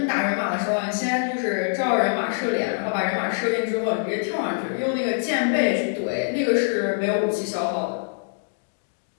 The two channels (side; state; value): right; silent; digital silence